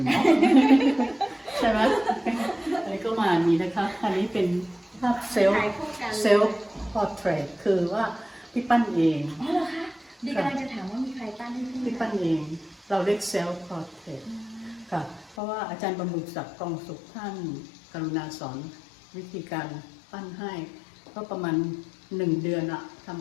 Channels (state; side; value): drops out; right; at 15.4 s